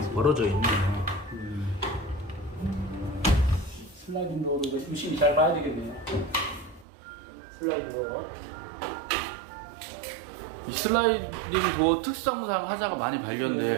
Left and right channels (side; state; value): left; drops out; at 6.9 s